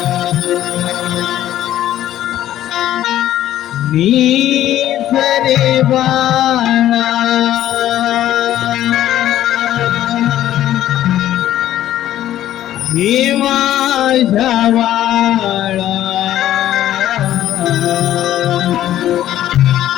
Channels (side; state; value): right; quieter; 12.6 dB